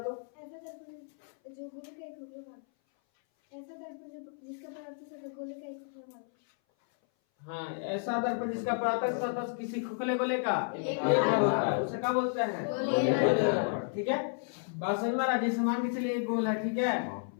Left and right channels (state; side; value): silent; right; 56 dB below the other